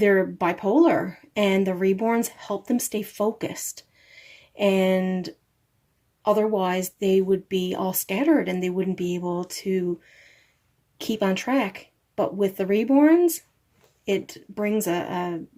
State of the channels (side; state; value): both; identical; correlation 1.00